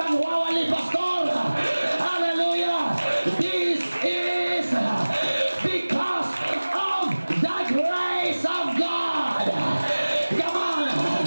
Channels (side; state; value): both; inverted; correlation -1.00